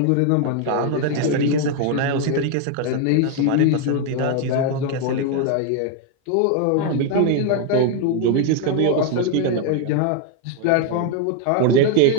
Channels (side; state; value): both; different; correlation 0.01